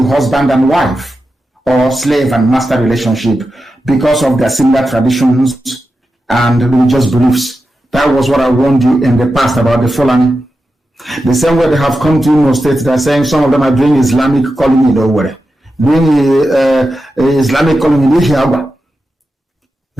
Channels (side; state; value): both; normal; correlation 0.90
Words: husband and wife or slave and master relationship because of their similar traditions and religious beliefs. That was what I warned you in the past about the Fulani. The same way they have come to Imo State, they're saying some of them are doing Islamic calling in Owerri, doing Islamic calling in Ihiagwa.